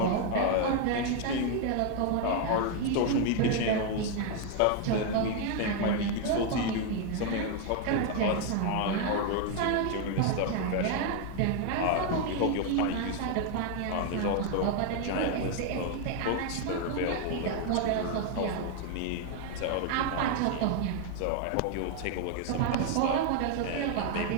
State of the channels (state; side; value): different; both; correlation 0.01